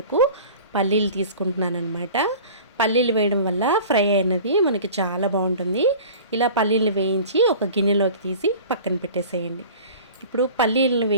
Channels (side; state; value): both; inverted; correlation -0.41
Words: పల్లీలు తీసుకుంటున్నాను అనమాట. పల్లీలు వేయడం వల్ల ఫ్రై అయినది మనకి చాలా బాగుంటుంది. ఇలా పల్లీలు వేయించి ఒక గిన్నెలోకి తీసి పక్కన పెట్టేసేయండి. ఇప్పుడు పల్లీలను